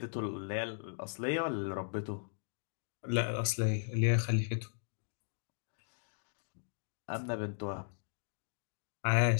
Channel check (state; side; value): silent; right; digital silence